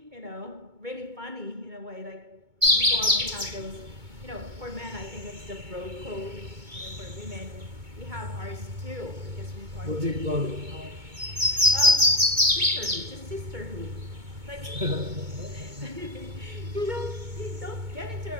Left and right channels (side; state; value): left; late; 2.2 ms